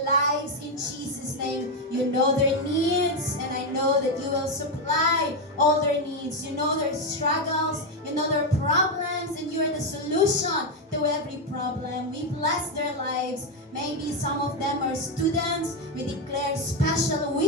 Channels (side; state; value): both; normal; correlation 0.06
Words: lives in Jesus' name. You know their needs, and I know that you will supply all their needs. You know their struggles, you know their problems, and you are the solution to every problem. We bless their lives. Maybe some of them are students. We declare special